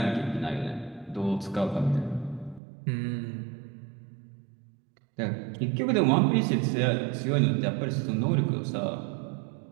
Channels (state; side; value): drops out; left; at 2.6 s